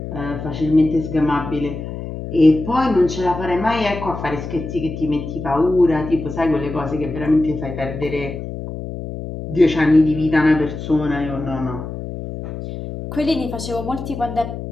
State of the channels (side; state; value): left; noise; hum, 8 dB below the sound